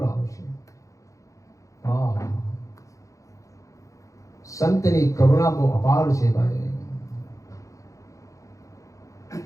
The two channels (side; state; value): right; late; 0.16 ms